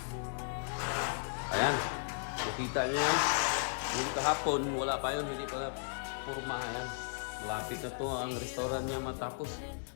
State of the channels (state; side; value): silent; right; digital silence